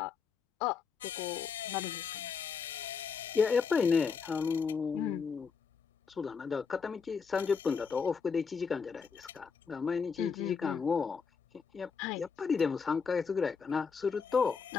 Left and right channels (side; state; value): right; quieter; 5.7 dB